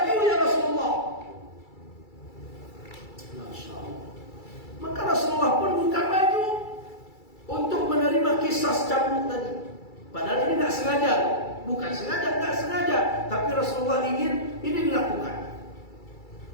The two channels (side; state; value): right; late; 2.3 ms